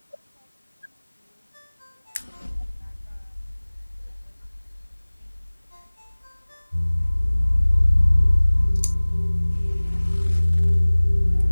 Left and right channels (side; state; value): both; inverted; correlation -1.00